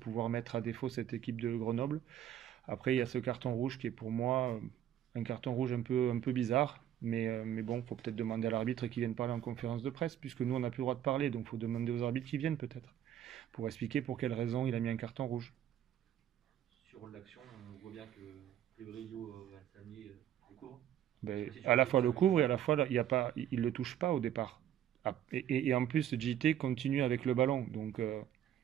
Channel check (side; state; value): left; quieter; 10.8 dB